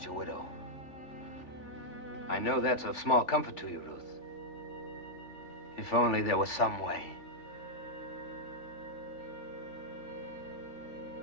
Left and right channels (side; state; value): right; late; 3.4 ms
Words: a widow. I know that's of small comfort to you, Ruth. If only there was some way.